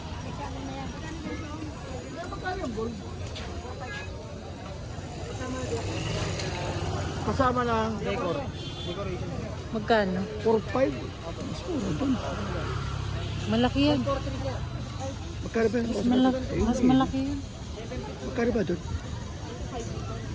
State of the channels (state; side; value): identical; both; correlation 1.00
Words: Magkano yung ball? Kasama ng decor. Decoration. Magkano? 4-5. Mas mura doon. Malaki yan. Magkano ba yun? Mas malaki yan. Magkano ba doon?